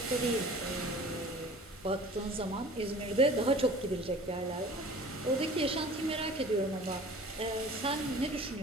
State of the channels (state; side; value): normal; both; correlation 0.45